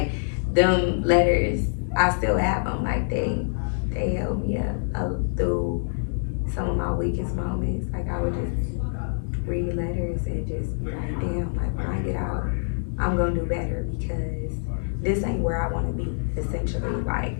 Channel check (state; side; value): silent; right; 61 dB below the other